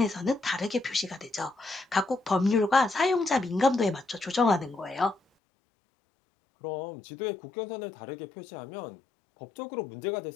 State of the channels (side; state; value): right; drops out; at 5.2 s